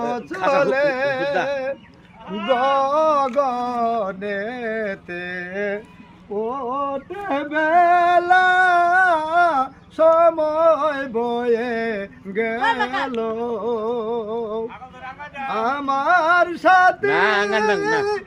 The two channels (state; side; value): identical; both; correlation 1.00